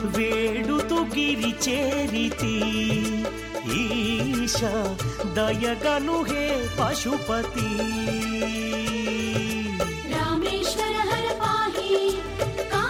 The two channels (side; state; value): both; identical; correlation 1.00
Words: వేడుతు గిరి చేరితి ఈశ దయగను హే పశుపతి రామేశ్వర హర పాహి